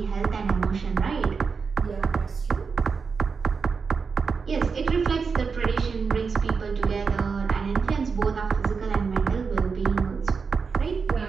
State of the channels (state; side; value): quieter; left; 5.3 dB